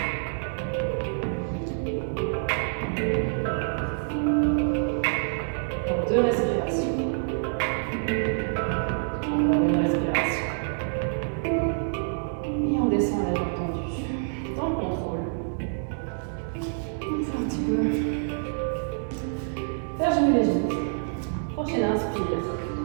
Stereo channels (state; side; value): silent; left; 59 dB below the other